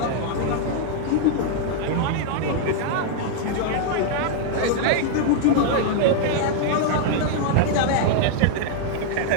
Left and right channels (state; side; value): different; both; correlation 0.00